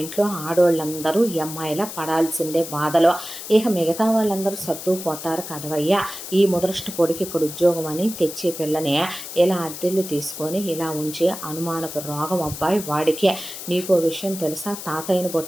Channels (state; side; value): noise; left; hiss, 10 dB below the sound